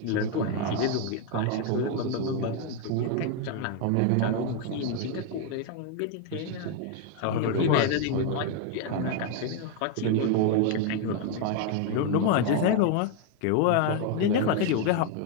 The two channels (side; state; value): both; different; correlation 0.01